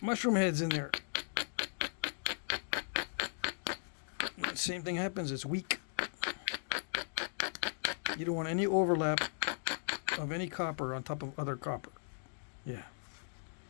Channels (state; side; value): silent; right; digital silence